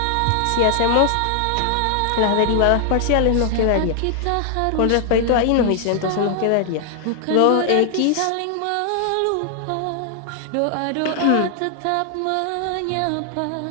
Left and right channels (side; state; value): both; different; correlation 0.00